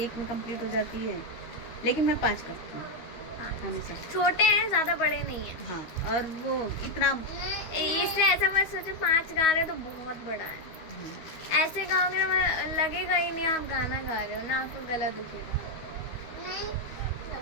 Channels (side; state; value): right; late; 12 ms